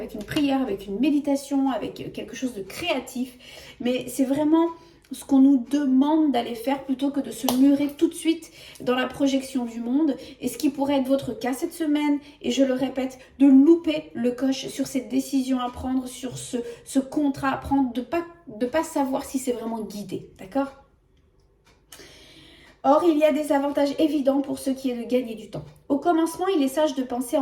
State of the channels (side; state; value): both; identical; correlation 1.00